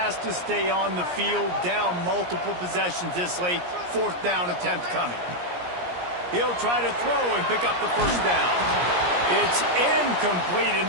to stay on the field, down multiple possessions this late. 4th down attempt coming. He'll try to throw and pick up the 1st down. It's incomplete, and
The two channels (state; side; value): late; left; 17 ms